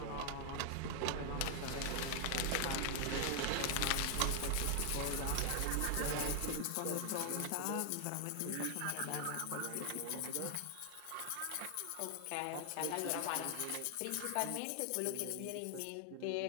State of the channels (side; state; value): both; different; correlation 0.00